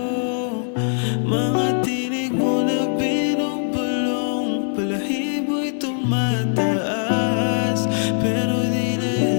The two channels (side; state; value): right; silent; digital silence